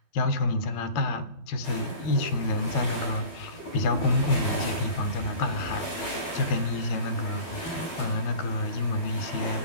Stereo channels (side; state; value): right; late; 12 ms